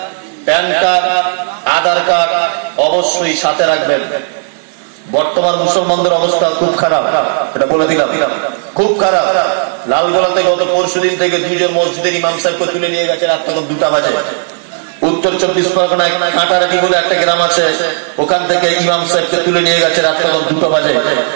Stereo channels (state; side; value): silent; left; 64 dB below the other